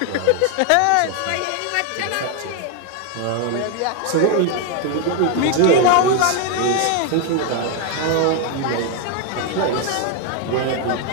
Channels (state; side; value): different; both; correlation 0.01